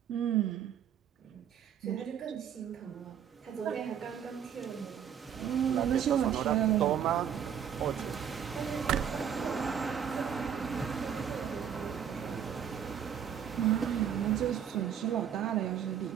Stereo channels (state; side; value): quieter; left; 8.6 dB